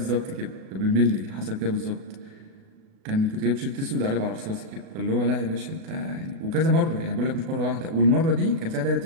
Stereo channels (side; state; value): left; late; 37 ms